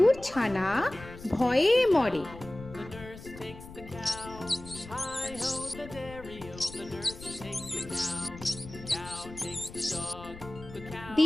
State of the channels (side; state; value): left; noise; rumble, 15 dB below the sound